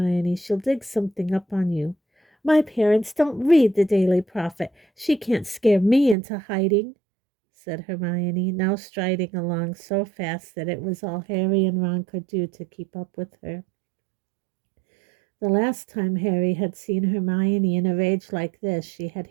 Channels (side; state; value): left; drops out; at 6.2 s